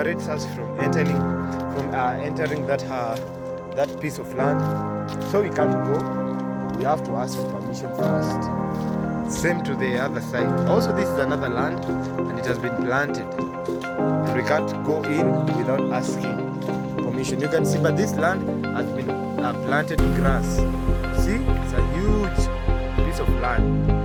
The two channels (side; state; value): both; identical; correlation 1.00